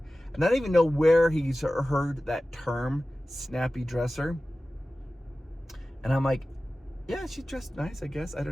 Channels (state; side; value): normal; both; correlation 0.96